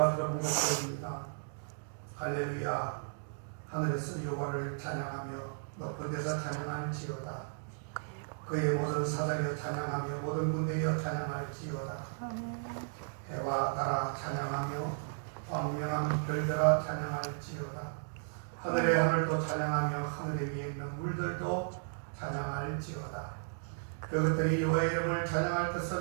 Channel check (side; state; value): left; silent; digital silence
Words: 것입니다. 할렐루야. 하늘에서 여호와를 찬양하며 높은 데서 찬양할지어다. 그의 모든 사자여 찬양하며 모든 군대여 찬양할지어다. 해와 달아 찬양하며 광명한 별들아 찬양할지어다. 하늘의 하늘도 찬양하며 하늘 위에 있는 물들도 찬양할지어다. 그것들이 여호와의 이름을 찬양할